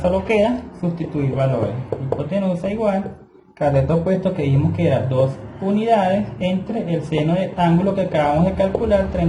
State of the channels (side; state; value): both; identical; correlation 1.00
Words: solo queda sustituir valores. Hipotenusa igual cateto opuesto, que dijimos que era 2 unidades, entre el seno del ángulo que acabamos de calcular,